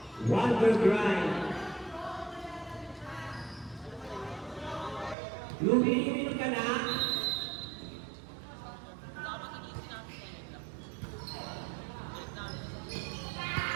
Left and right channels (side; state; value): left; drops out; at 5.2 s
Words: Wonder Grind. Lumilimit ka na.